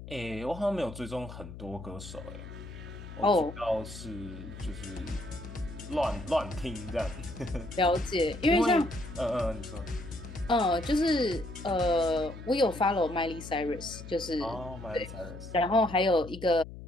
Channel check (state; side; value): noise; left; hum, 13 dB below the sound